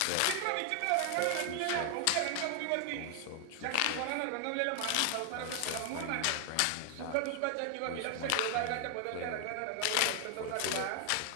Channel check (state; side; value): different; both; correlation 0.00